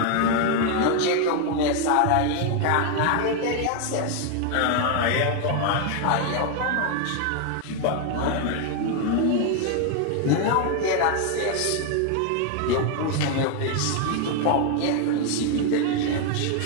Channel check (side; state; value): both; different; correlation 0.01